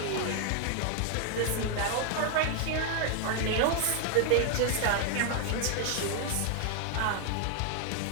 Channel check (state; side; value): different; both; correlation 0.00